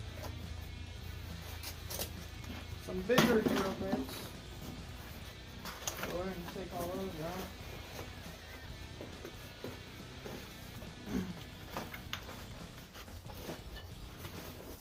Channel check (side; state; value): both; identical; correlation 1.00